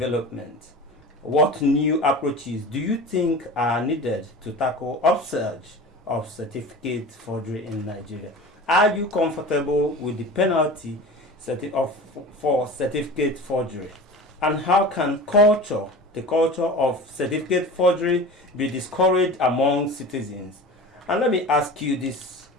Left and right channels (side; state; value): both; normal; correlation 0.35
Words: What new approaches do you think are needed to tackle upsurge of certificate forgery in Nigeria? Are you comfortable with the penalty for certificate forgery? And how can the culture of certificate forgery be discouraged among citizens? And let me ask you this